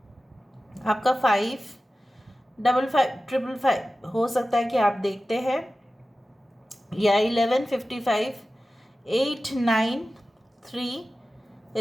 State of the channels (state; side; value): normal; both; correlation 0.95